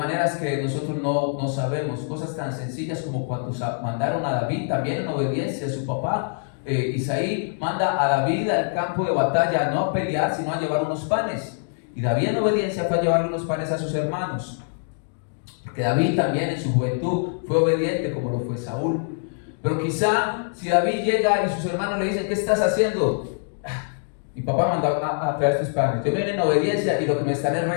que nosotros no sabemos. Cosas tan sencillas como cuando mandaron a David también en obediencia a su papá. Isaí manda a David al campo de batalla, no a pelear, sino a llevar unos panes. Y David en obediencia fue a llevar unos panes a sus hermanos. Porque David también en su juventud fue obediente como lo fue Saúl. Pero quizá si David llega y sus hermanos le dicen: ¿qué estás haciendo? Mi papá mandó a traer estos panes. Yo vine en obediencia y lo que me están es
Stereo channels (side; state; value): right; silent; digital silence